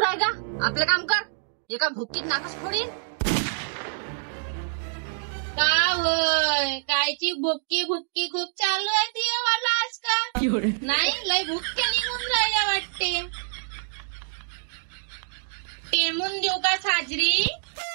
का, आपलं काम कर. एका भुक्कीत नाकच फोडीन. का होय, कायची भुक्की भुक्की खूप चालू आहे ती मला आजकाल. नाही, लय भुक्के निघून राहिल्या वाटते. टेमून देऊ का साजरी?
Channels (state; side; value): silent; left; digital silence